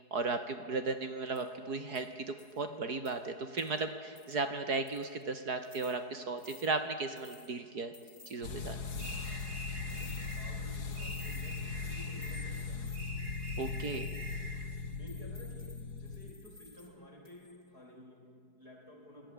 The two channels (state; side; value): late; left; 4.7 ms